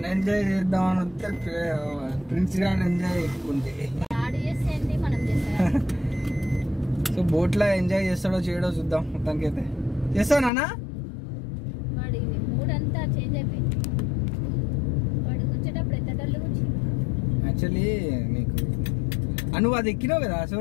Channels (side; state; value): right; drops out; at 10.5 s